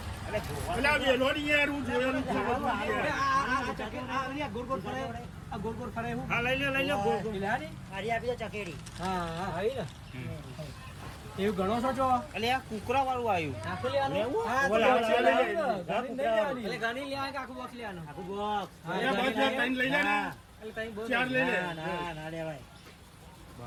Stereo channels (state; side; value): identical; both; correlation 1.00